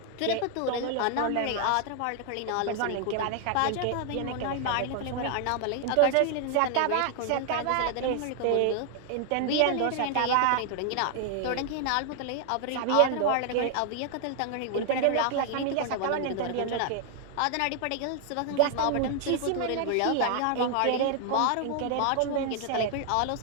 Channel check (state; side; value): different; both; correlation 0.00